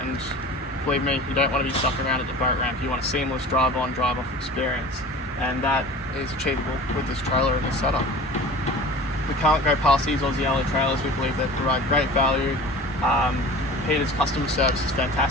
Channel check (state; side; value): normal; both; correlation 0.39